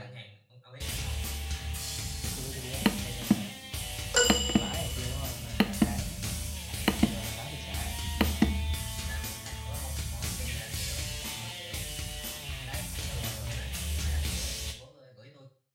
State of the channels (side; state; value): both; identical; correlation 1.00